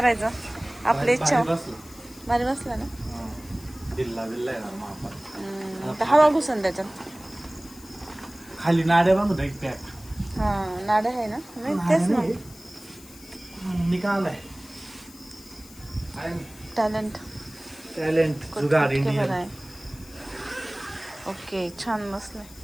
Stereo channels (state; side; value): noise; left; hiss, 20 dB below the sound